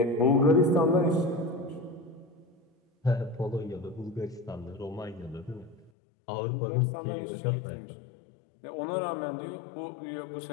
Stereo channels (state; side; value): drops out; right; at 5.9 s